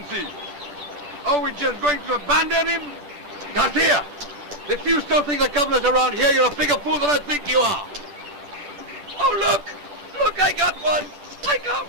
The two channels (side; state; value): left; late; 10 ms